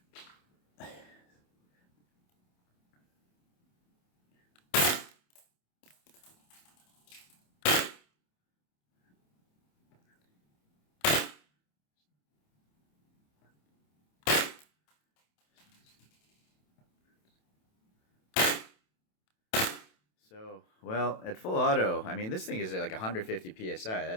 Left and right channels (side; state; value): right; late; 27 ms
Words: So, well, at full auto, I mean, this thing is like 150 psi.